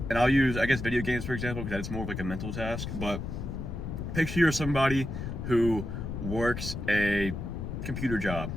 and I'll use, I guess, video games for example, because that's more of like a mental task. But picture you're somebody who works a computer job.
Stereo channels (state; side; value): noise; left; rumble, 5 dB below the sound